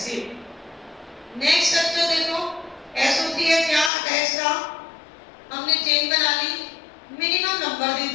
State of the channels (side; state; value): right; drops out; at 3.9 s